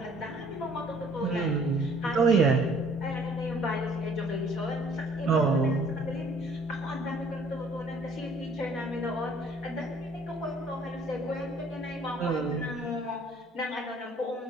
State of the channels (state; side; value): normal; both; correlation 0.57